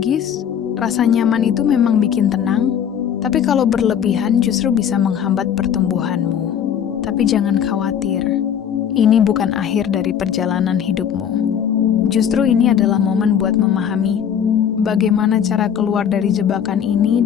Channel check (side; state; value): right; quieter; 8.6 dB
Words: rasa nyaman itu memang bikin tenang, tapi kalau berlebihan justru bisa menghambat pertumbuhanmu. Tapi jangan khawatir, ini bukan akhir dari perjalanan hidupmu. Justru ini adalah momen buat memahami bagaimana cara keluar dari jebakan ini